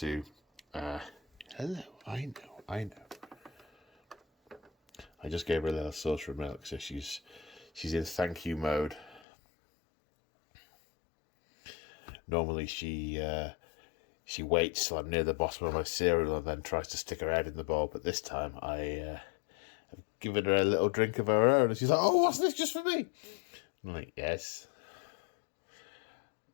Hello, I know. I just gave her a little saucer of milk, so she's in thank you mode. Normally she waits till I'm near the bottom of my cereal and then tries to stick her head in the bowl, but this time I have given her a little drink of her own, and she's like, "Oh, what's this, just for me?" I'm like, yes.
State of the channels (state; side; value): drops out; right; at 9.2 s